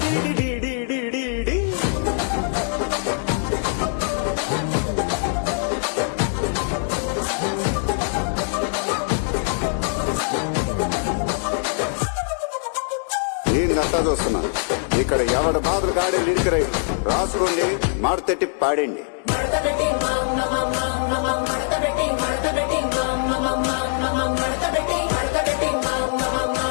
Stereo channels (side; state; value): right; silent; 64 dB below the other